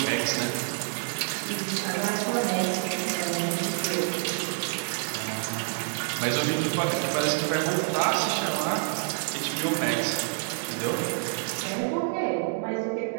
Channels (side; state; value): left; silent; digital silence